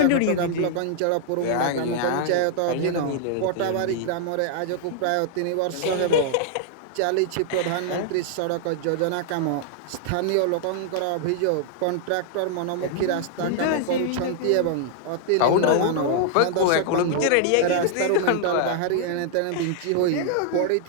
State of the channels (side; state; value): both; different; correlation -0.01